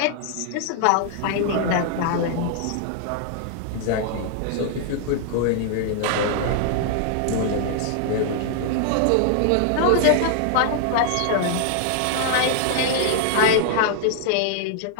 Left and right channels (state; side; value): different; both; correlation -0.01